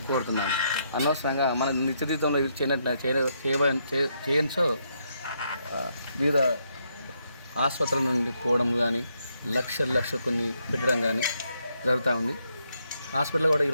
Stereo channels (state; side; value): inverted; both; correlation -0.77